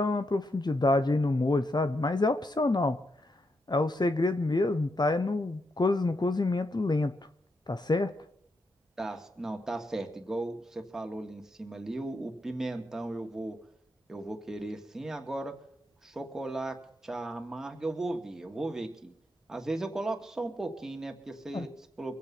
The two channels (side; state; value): both; normal; correlation 0.82